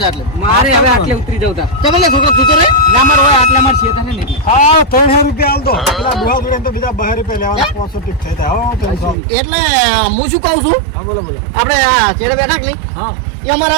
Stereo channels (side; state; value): left; drops out; at 9.2 s